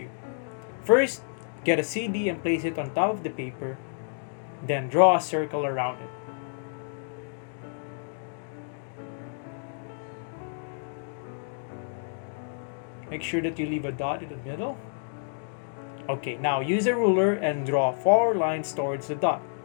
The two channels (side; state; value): right; silent; digital silence